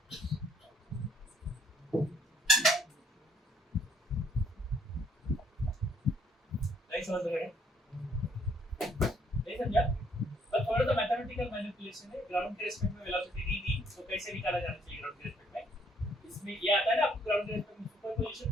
नहीं समझ रहे, नहीं समझा, पर थोड़ा सा मैथमेटिकल मैनिपुलेशन है। ग्राउंड के रिस्पेक्ट में वेलोसिटी दी दी तो कैसे निकाला जाना चाहिए ग्राउंड के रिस्पेक्ट में, इसमें ये आता है ना आपको ग्राउंड के रिस्पेक्ट में सुपरपोजिशन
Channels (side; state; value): both; normal; correlation 0.66